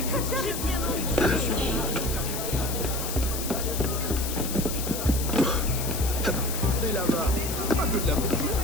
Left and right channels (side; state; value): left; noise; hiss, 6 dB below the sound